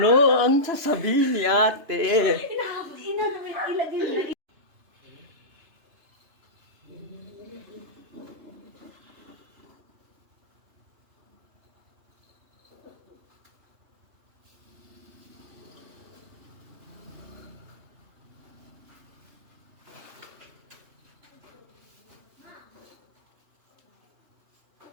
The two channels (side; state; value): left; late; 3.0 ms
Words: ang sasabihin ni ate.